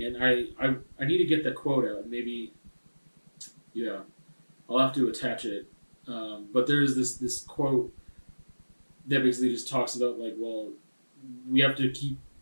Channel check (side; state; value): both; inverted; correlation -1.00